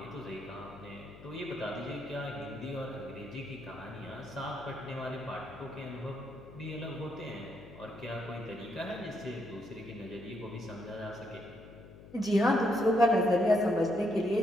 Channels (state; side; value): noise; left; hum, 18 dB below the sound